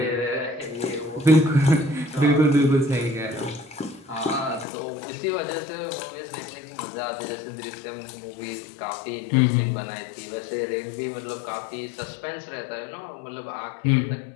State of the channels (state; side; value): drops out; right; at 4.7 s